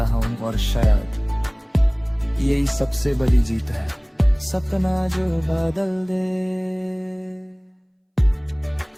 हूँ। और शायद यही सबसे बड़ी जीत है, सपना जो बदल दे।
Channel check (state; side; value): identical; both; correlation 1.00